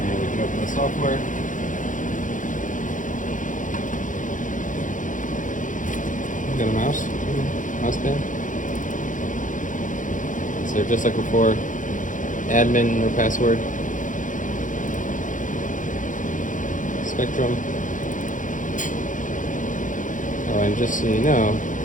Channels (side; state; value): right; late; 0.37 ms